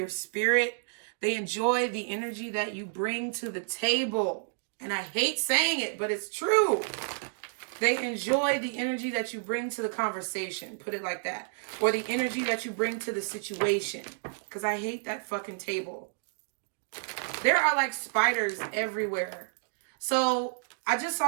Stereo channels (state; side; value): silent; left; digital silence